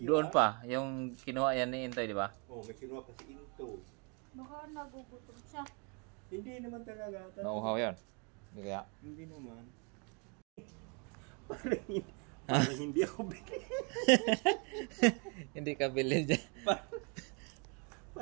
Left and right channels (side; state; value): left; quieter; 34.9 dB